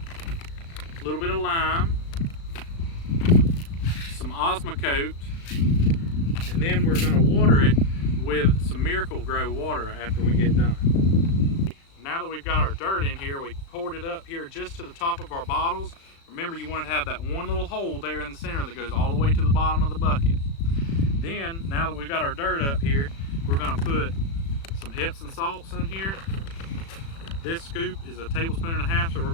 little bit of lime, some Osmocote, and then we're going to water it with some Miracle-Gro water after we get done. Now that we've got our dirt in here, we poured it up here just to the top of our bottles. Remember, you want to have that one little hole there in the center that goes all the way to the bottom of the bucket. Then, now that we've got our dirt up here, we're going to put some Epsom salts in here. This scoop is a tablespoon and a half, so we're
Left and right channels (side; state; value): right; late; 36 ms